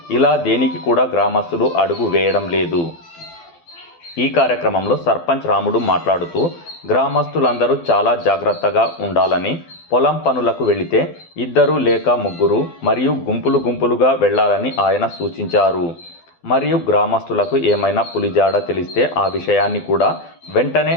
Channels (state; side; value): late; right; 12 ms